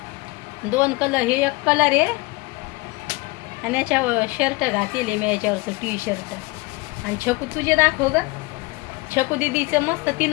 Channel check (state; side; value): quieter; right; 23.9 dB